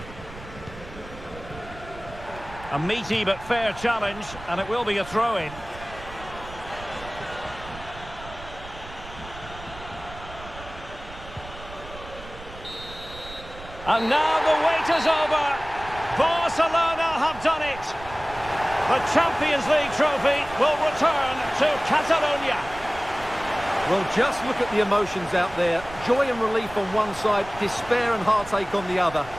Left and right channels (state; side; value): noise; right; rumble, 16 dB below the sound